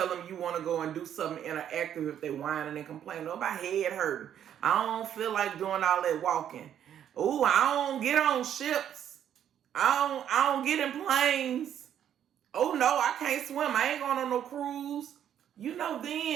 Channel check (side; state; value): left; quieter; 9.9 dB